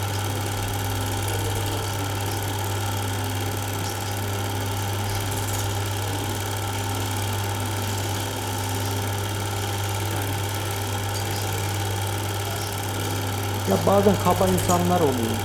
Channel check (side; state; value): both; identical; correlation 1.00